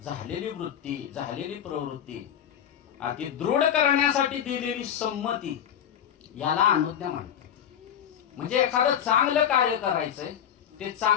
झालेली वृत्ती, झालेली प्रवृत्ती अति दृढ करण्यासाठी दिलेली संमती याला अनुज्ञा म्हणतात. म्हणजे एखादं चांगलं कार्य करायचंय, ते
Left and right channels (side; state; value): right; quieter; 9.4 dB